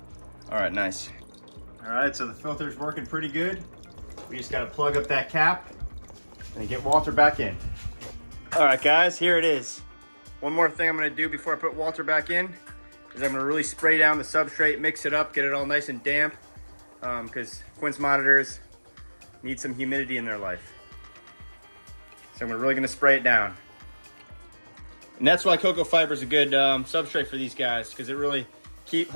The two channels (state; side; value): inverted; both; correlation -1.00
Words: All right, nice. All right, so the filter's working pretty good. We just gotta plug up that cap and get Walter back in. All right, guys, here it is. One more thing I'm gonna do before I put Walter back in is I'm gonna really spray down the substrate, mix it up, get it all nice and damp. because Quince monitors need some humidity in their life. So we're really gonna spray it down. And that's why cocoa fiber is a good substrate for these guys, because it really